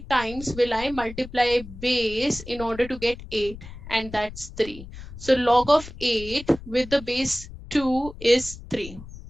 times will I multiply base in order to get 8? And that's 3. So log of 8 with the base 2 is 3.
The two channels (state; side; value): noise; left; rumble, 14 dB below the sound